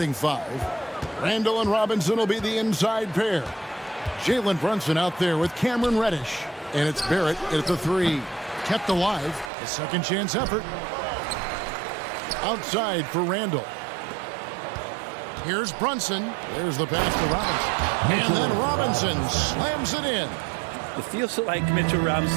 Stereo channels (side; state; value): left; drops out; at 9.5 s